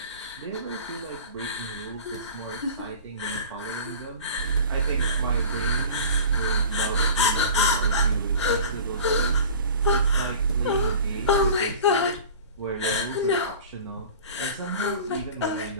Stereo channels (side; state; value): both; inverted; correlation -0.39